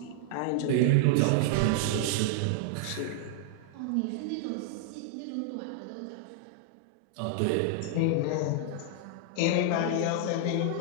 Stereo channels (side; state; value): both; different; correlation -0.01